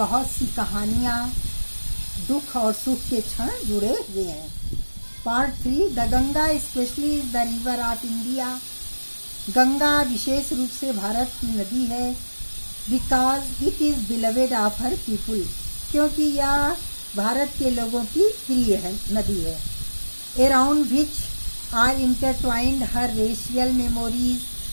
सी कहानियाँ, दुख और सुख के क्षण जुड़े हुए हैं। Part 3, the Ganga specially is the river of India. Ganga विशेष रूप से भारत की नदी है because it is beloved of her people, क्योंकि यह भारत के लोगों की प्रिय है नदी है। Around which are intertwined her racial memories,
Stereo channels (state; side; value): inverted; both; correlation -1.00